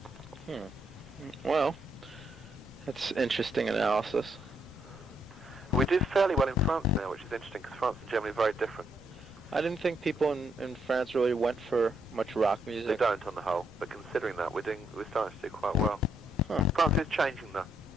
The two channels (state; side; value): normal; both; correlation 0.76